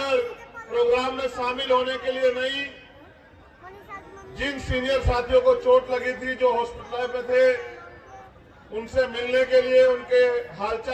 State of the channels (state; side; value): identical; both; correlation 1.00